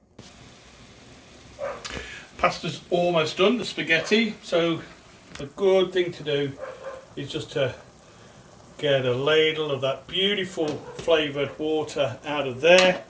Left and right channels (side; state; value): both; identical; correlation 1.00